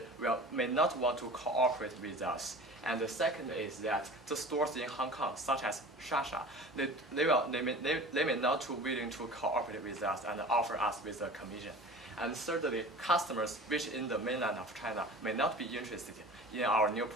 may not want to cooperate with us. And the second is that the stores in Hong Kong, such as Shasha, they may not be willing to cooperate with us and offer us with a commission. And thirdly, customers which in the mainland of China may not be interested in our new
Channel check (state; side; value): normal; both; correlation 0.39